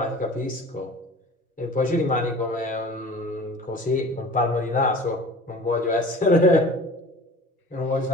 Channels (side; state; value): both; normal; correlation 0.42